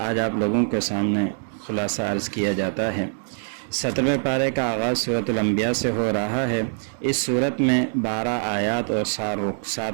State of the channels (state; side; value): silent; left; 63 dB below the other